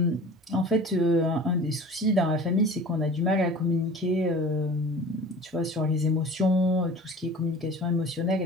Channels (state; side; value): normal; both; correlation 0.41